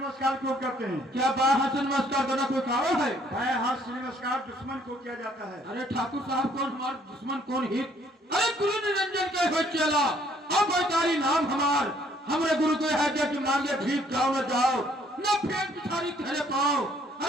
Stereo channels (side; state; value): both; normal; correlation 0.63